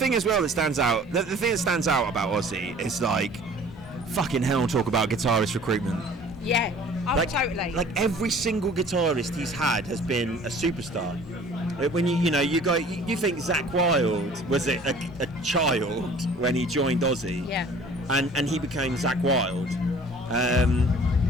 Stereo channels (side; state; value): both; normal; correlation 0.49